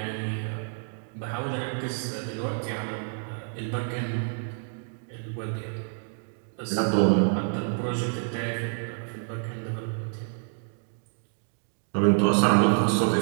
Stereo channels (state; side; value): silent; left; digital silence